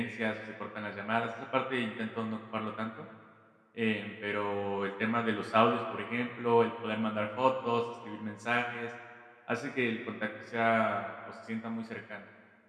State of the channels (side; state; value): both; identical; correlation 1.00